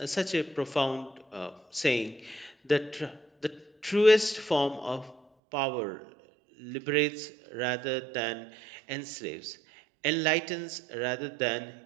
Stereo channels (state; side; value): drops out; left; at 5.2 s